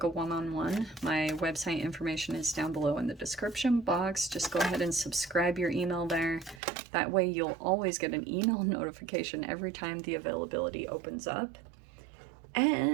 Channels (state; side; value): drops out; left; at 6.6 s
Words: a one-on-one, my website information is down below in the description box. Just go ahead and subscribe your email there. That way you'll always get an email notification every time the availability opens up.